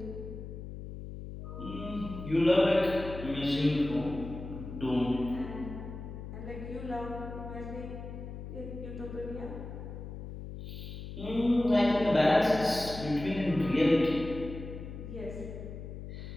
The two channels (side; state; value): left; noise; hum, 10 dB below the sound